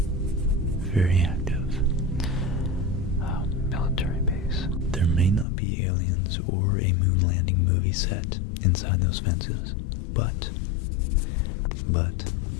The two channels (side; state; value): right; drops out; at 5.5 s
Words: very active military base. There may not be aliens or a moon landing movie set inside those fences, but